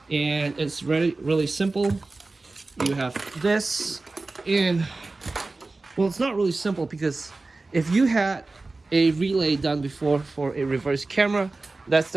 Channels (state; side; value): quieter; left; 3.4 dB